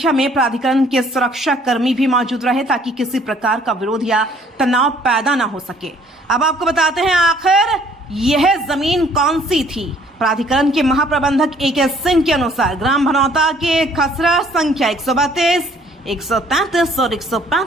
में प्राधिकरण के सुरक्षा कर्मी भी मौजूद रहे ताकि किसी प्रकार का विरोध या तनाव पैदा न हो सके। अब आपको बताते हैं आखिर यह जमीन कौन सी थी। प्राधिकरण के महाप्रबंधक AK सिंह के अनुसार ग्राम भनौता के खसरा संख्या 132, 133 और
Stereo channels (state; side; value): normal; both; correlation 0.60